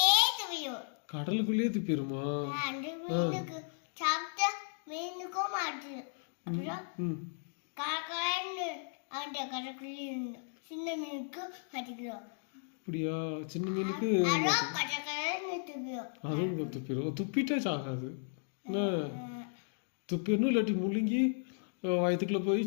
துவியும். கடலுக்குள்ளேயே துப்பிடுமா? அந்த மீனுக்கு சாப்பிட்டா மீனுக்கும் மாட்டு. அப்புறம் காக்கான்னு அந்த கடற்குள்ளே இருந்தோம். சின்ன மீனுக்கு மாட்டிக்கிறோம். அப்படியா? சின்ன மீனுக்கு அதுவும் துப்பிடும். துப்பிட்டா சாகாது. என்ன துப்பிடணும், இல்லாட்டி முழுங்கி வயிற்றுக்குள்ளே போய்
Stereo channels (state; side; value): silent; right; digital silence